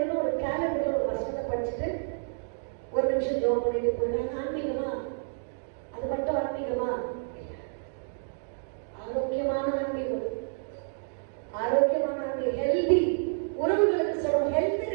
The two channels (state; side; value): silent; left; digital silence